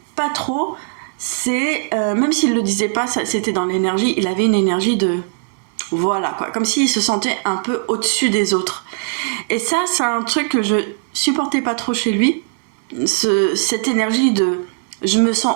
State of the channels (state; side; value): silent; left; digital silence